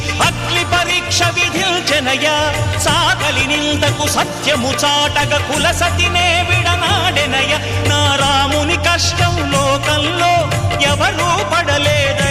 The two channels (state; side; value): identical; both; correlation 1.00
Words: అగ్ని పరీక్ష విధించెనయా సాగలి నిందకు సత్యము చాటగ కులసతినే విడనాడెనయ నా రాముని కష్టం లోకంలో ఎవరూ